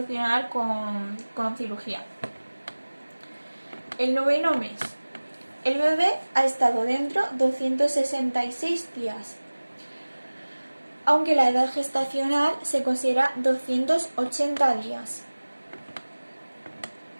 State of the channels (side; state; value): both; inverted; correlation -1.00